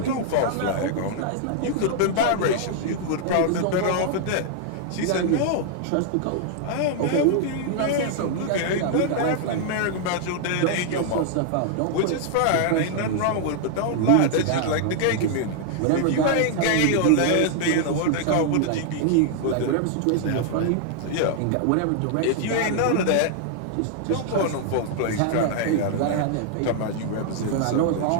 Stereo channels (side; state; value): both; different; correlation -0.01